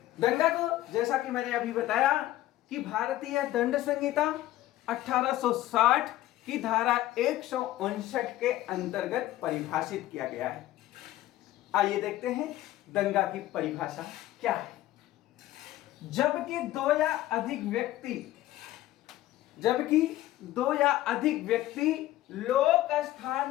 दंगा को, जैसा कि मैंने अभी बताया, कि भारतीय दंड संहिता 1860 की धारा 159 के अंतर्गत परिभाषित किया गया है। आइए देखते हैं दंगा की परिभाषा क्या है। जबकि दो या अधिक व्यक्ति लोक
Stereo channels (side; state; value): right; quieter; 15.1 dB